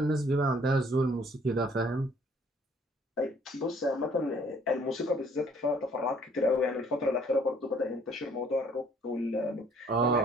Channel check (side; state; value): both; normal; correlation 0.60